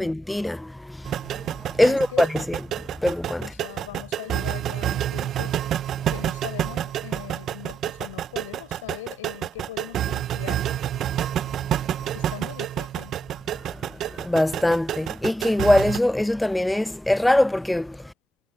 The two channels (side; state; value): both; normal; correlation 0.83